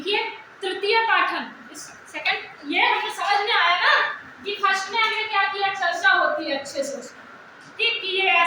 तृतीय पाठन। सेकंड ये हमें समझ में आया ना कि फर्स्ट में हमने क्या किया, चर्चा होती है अच्छे से उसमें, ठीक, कि ये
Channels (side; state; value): both; identical; correlation 1.00